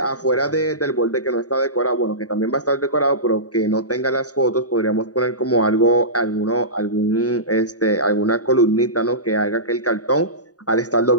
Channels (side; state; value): right; late; 0.68 ms